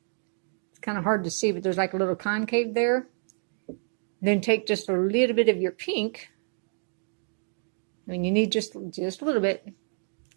It's kind of hard to see, but there's like a little concave there. Then take just a little bit of your pink. I mean, you need just a little bit.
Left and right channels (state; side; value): silent; left; digital silence